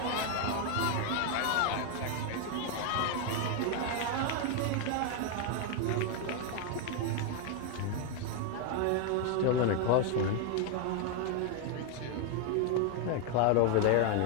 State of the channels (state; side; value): different; both; correlation 0.00